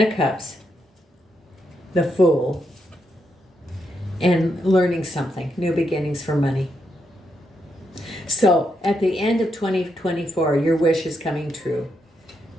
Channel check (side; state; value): both; normal; correlation 0.81